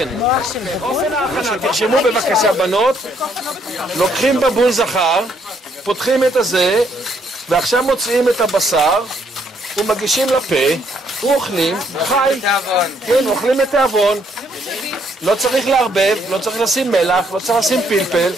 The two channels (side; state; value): both; normal; correlation 0.70